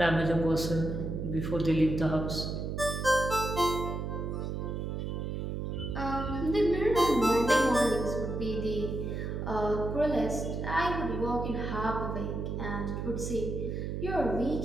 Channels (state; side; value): noise; right; hum, 3 dB below the sound